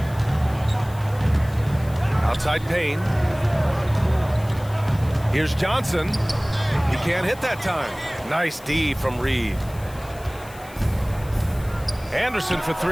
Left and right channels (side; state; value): left; noise; hiss, 21 dB below the sound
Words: Outside Payne. Here's Johnson. He can't hit that time. Nice D from Reed. Anderson for